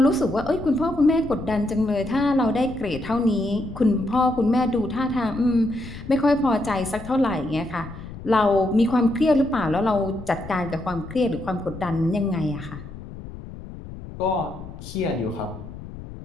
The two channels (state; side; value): noise; left; rumble, 13 dB below the sound